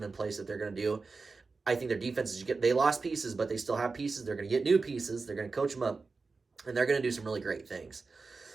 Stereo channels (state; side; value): quieter; left; 4.2 dB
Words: in place that they're going to do. I think their defense they lost pieces, but they still have pieces. They're going to get new pieces. They're going to coach them up, and they're going to do some really great things.